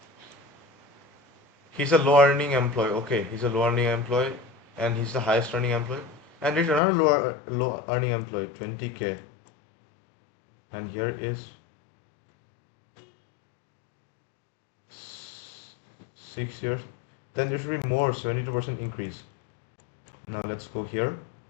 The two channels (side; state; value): right; drops out; at 6.8 s